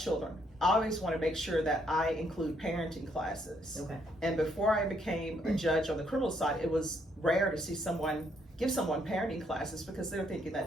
I always want to make sure that I include parenting classes. Okay. And before I became a judge on the criminal side, it was rare to see someone give someone parenting classes because they're thinking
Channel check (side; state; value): both; normal; correlation 0.71